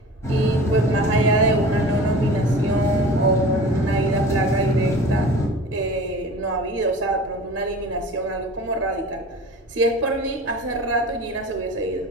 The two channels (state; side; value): normal; both; correlation 0.39